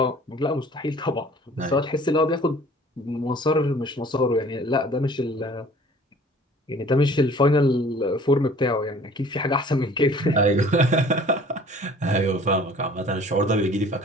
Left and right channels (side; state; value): both; normal; correlation 0.50